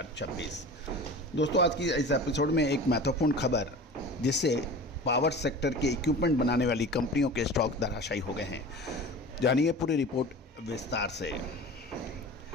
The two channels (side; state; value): both; normal; correlation 0.37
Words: दोस्तों आज की इस एपिसोड में एक महत्वपूर्ण खबर, जिससे पावर सेक्टर के इक्विपमेंट बनाने वाली कंपनियों के स्टॉक धराशायी हो गए हैं। जानिए पूरी रिपोर्ट विस्तार से।